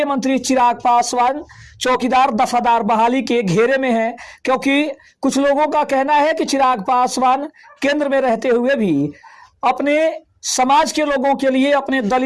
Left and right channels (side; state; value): both; identical; correlation 1.00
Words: मंत्री चिराग पासवान चौकीदार दफादार बहाली के घेरे में हैं, क्योंकि कुछ लोगों का कहना है कि चिराग पासवान केंद्र में रहते हुए भी अपने समाज के लोगों के लिए, अपने